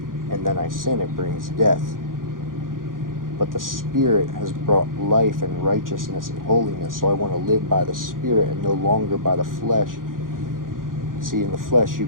and then I sin, it brings death. But the Spirit has brought life and righteousness and holiness. So I want to live by the Spirit and no longer by the flesh. See, in the flesh, you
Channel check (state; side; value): late; left; 0.90 ms